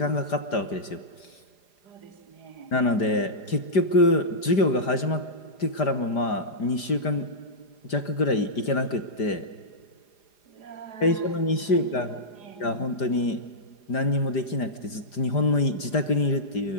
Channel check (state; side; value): late; right; 5.0 ms